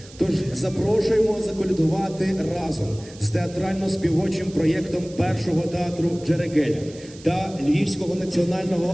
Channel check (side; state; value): right; noise; hiss, 21 dB below the sound